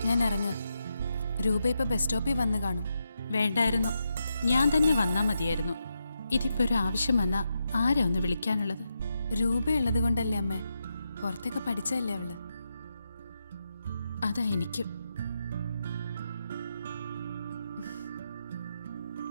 ഞാൻ ഇറങ്ങുക. രൂപ ഇപ്പൊ ബസ് സ്റ്റോപ്പിൽ വന്ന് കാണും. വേണ്ടായിരുന്നു, ഞാൻ തന്നെ വന്നാ മതിയായിരുന്നു. ഇതിപ്പോ ഒരു ആവശ്യം വന്നാ ആരാ ഒന്ന് വിളിക്കാനുള്ളത്? രൂപയുള്ളത് കൊണ്ടല്ലേ അമ്മേ, പുറത്തൊക്കെ പഠിച്ചല്ലേ അവള്. അതാ എനിക്കും.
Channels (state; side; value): inverted; both; correlation -0.85